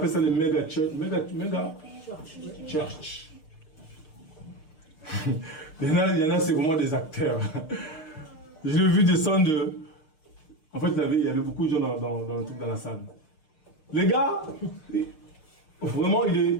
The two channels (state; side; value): late; right; 6.6 ms